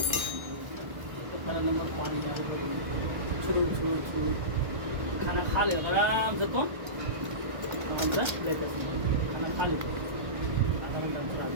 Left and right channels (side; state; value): left; late; 1.2 ms